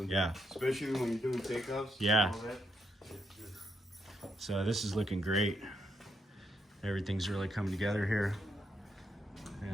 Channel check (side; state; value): both; normal; correlation 0.79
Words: Yeah. Especially when you're doing takeoffs. Yeah. So this is looking great. Everything's really coming together here.